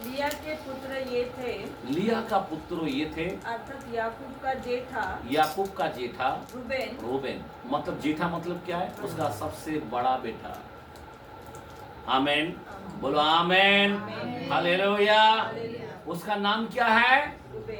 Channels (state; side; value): identical; both; correlation 1.00